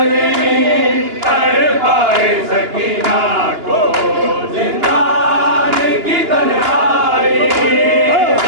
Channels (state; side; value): late; left; 2.9 ms